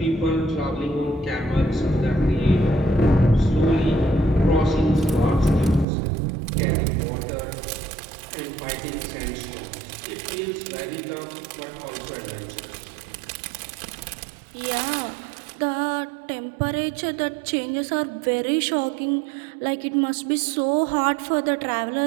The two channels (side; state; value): left; drops out; at 5.9 s